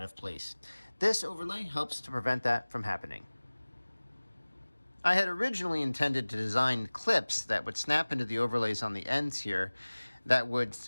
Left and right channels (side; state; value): both; inverted; correlation -1.00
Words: of place. This overlay helps to prevent that from happening. I had originally intended to design clips that would snap into the overlays on the ends here that would